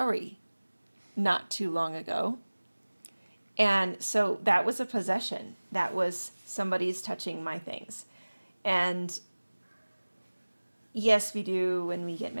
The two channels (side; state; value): both; inverted; correlation -1.00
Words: not too long ago. And so that was a possession. That was, somebody's touching my things. And yes, we do, when we get